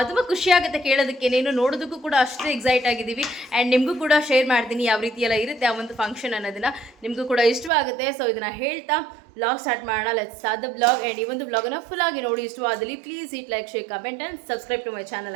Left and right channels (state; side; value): drops out; left; at 7.7 s